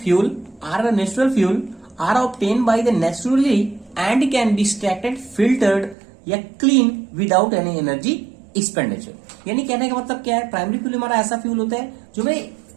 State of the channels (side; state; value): left; drops out; at 6.0 s